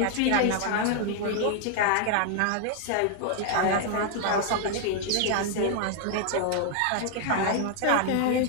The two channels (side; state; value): both; different; correlation 0.00